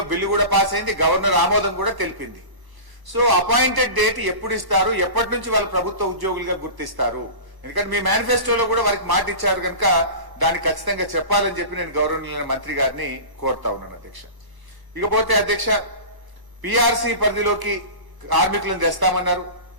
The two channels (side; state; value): left; late; 1.1 ms